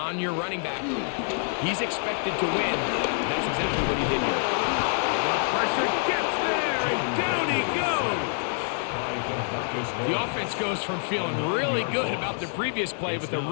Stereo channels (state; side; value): silent; right; 60 dB below the other